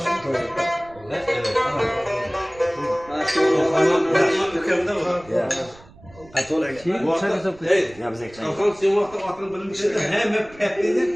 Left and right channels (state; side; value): noise; right; rumble, 23 dB below the sound